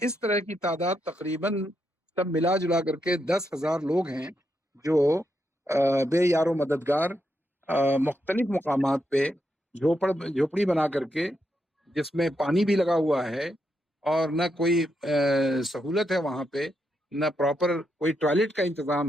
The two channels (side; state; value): both; normal; correlation 0.82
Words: इस तरह की तादाद तकरीबन सब मिला जुला करके 10,000 लोग हैं, जो बेयारो मददगार मुख्तलिफ मकामात पे झोपड़ी बना करके, जिसमें पानी भी लगा हुआ है और न कोई सहूलत है वहाँ पे, न प्रॉपर कोई टॉयलेट का